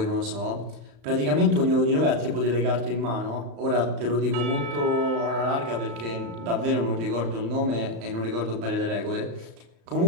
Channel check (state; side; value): late; left; 35 ms